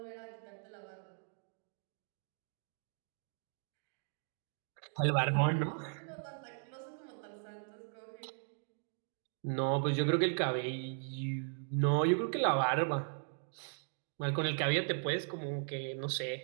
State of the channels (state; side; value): silent; left; digital silence